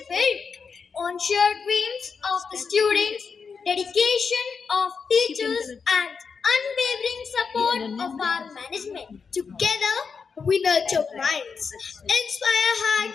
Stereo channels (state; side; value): quieter; right; 5.6 dB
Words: built on shared dreams of the students, dedication of teachers, and unwavering support of our management. Together, we nurture minds, inspire